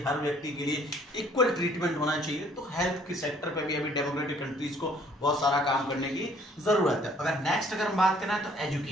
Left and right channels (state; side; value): normal; both; correlation 0.59